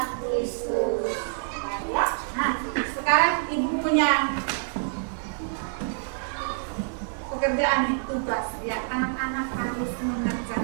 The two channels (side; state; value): left; silent; digital silence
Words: Kristus. Ya. Nah, sekarang ibu punya pekerjaan nih, tugas ya, anak-anak harus